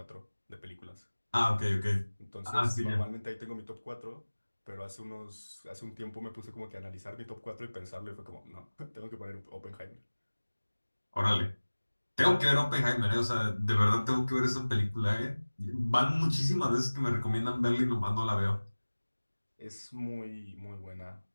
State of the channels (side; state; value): both; inverted; correlation -1.00